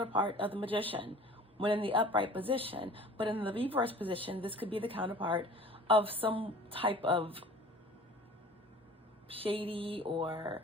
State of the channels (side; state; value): both; normal; correlation 0.44